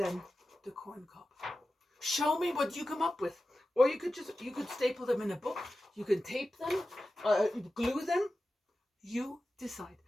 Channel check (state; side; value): normal; both; correlation 0.93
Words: the corn cob. Show me what you come up with. Or you could staple them in a book. You can tape them, glue them. You decide.